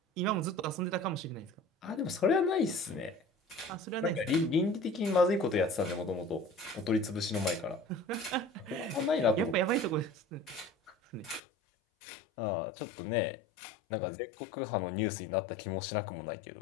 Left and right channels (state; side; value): drops out; right; at 11.4 s